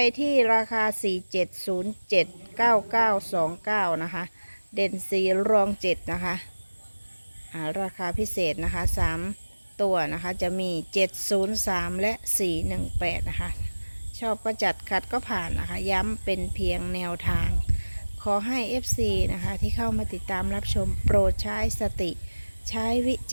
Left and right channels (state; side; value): inverted; both; correlation -1.00